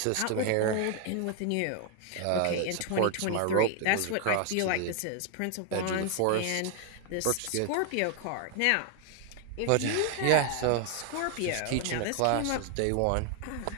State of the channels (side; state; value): both; different; correlation 0.00